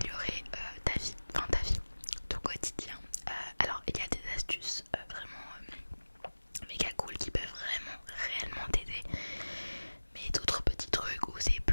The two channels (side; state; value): both; inverted; correlation -1.00